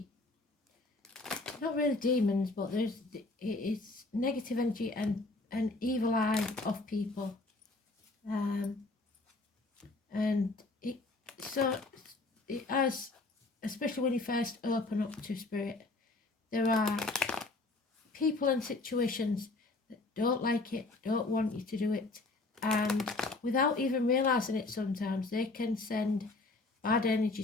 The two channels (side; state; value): right; quieter; 3.2 dB